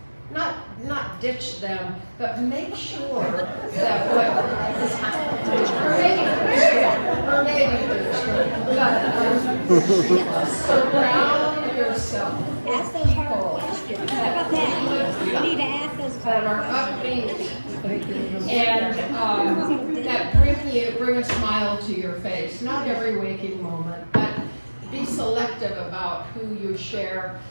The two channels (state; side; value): inverted; both; correlation -1.00